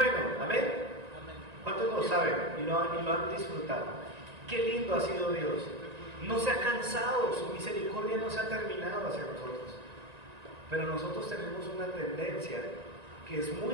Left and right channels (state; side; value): late; left; 1.9 ms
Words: amén. ¿Cuántos lo saben y lo han disfrutado? Qué lindo ha sido Dios. No se ha cansado, su misericordia no se ha terminado hacia nosotros. Pero nosotros tenemos una tendencia que es